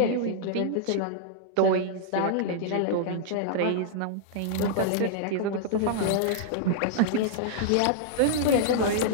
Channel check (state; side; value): different; both; correlation -0.01